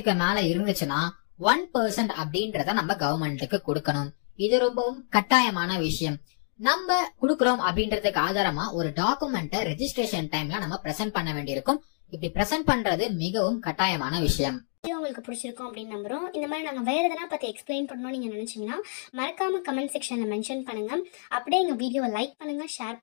மேல இருந்துச்சுன்னா 1% அப்படின்றத நம்ம கவர்மெண்ட்டுக்கு கொடுக்கணும். இது ரொம்பவும் கட்டாயமான விஷயம். நம்ம குடுக்கறோம் அப்படின்றதுக்கு ஆதாரமா ஒரு டாக்குமெண்ட்டை ரெஜிஸ்ட்ரேஷன் டைம்ல நம்ம பிரசன்ட் பண்ண வேண்டியிருக்கும். இப்படி பிரசன்ட் பண்றது மிகவும் கட்டாயமான விஷயம். உங்களுக்கு பிடிச்சிருக்கும் அப்படின்னு நம்புறோம். இந்த மாதிரி நாங்கள் வேறு எதனா பற்றி எக்ஸ்பிளைன் பண்ணணும்னு நீங்கள் நினச்சிங்கன்னா மறக்காம கமெண்ட் செக்ஷனில் மென்ஷன் பண்ணுங்கள். அப்படியே எங்கள் வீடியோவை லைக் பண்ணுங்கள், ஷேர்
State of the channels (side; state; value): right; silent; digital silence